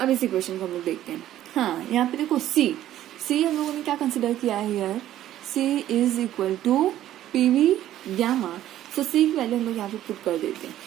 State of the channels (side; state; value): left; quieter; 12.8 dB